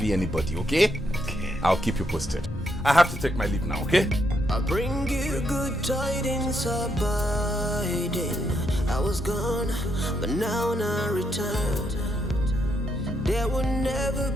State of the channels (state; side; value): normal; both; correlation 0.78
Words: anybody, okay? Okay. I'll keep you posted. I have to take my leave now, okay? I'll bring you good tidings abiding. I was gone, but now I return. There will never